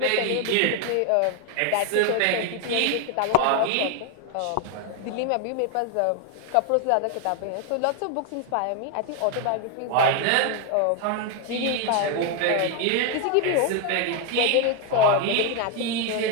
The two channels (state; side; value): different; both; correlation 0.01